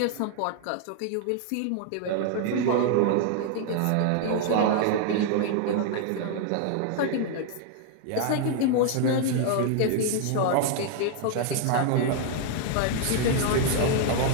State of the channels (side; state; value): both; different; correlation 0.00